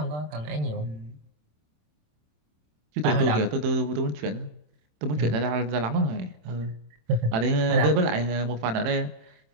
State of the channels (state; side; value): late; left; 27 ms